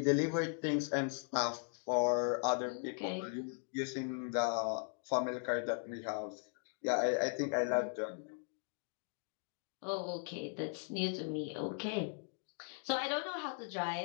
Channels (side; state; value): right; silent; 52 dB below the other